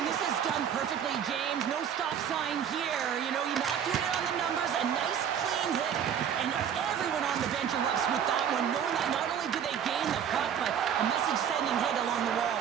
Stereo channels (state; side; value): quieter; left; 8.6 dB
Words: this is done perfectly, James. No stop sign here. You know, you're not doing it on the numbers. A nice, clean hit. And everyone on the bench erupts with that one, knowing that not only do they gain the puck, but a message-sending hit along the